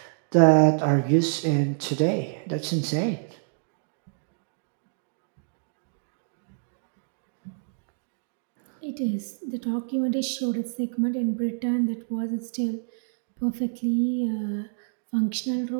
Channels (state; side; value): silent; left; digital silence